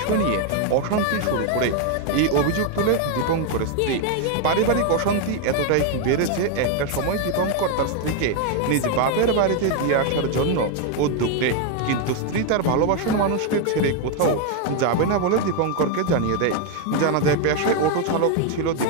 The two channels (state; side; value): different; both; correlation 0.01